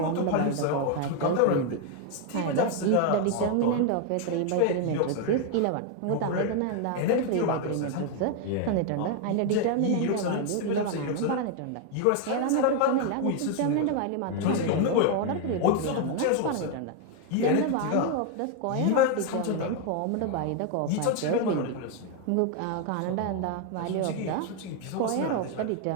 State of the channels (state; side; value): different; both; correlation 0.01